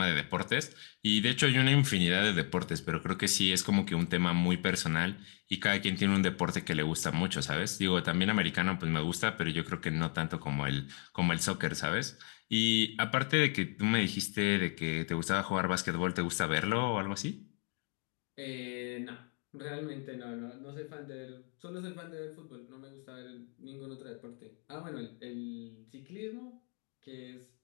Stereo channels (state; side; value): quieter; right; 39.8 dB